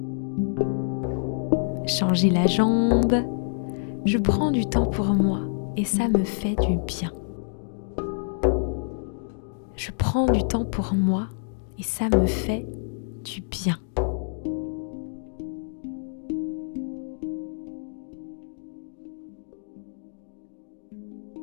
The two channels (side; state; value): right; silent; digital silence